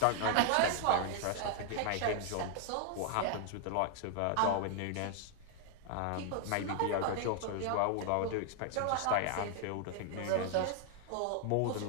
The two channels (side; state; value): both; different; correlation 0.00